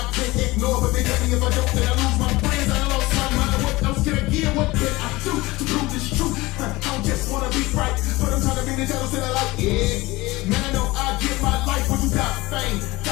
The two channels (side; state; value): right; quieter; 20.6 dB